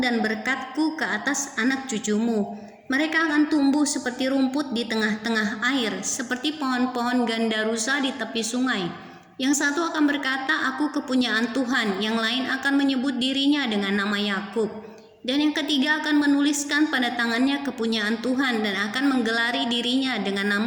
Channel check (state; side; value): identical; both; correlation 1.00